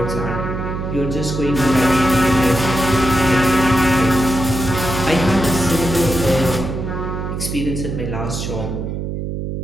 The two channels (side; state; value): right; noise; hum, 4 dB below the sound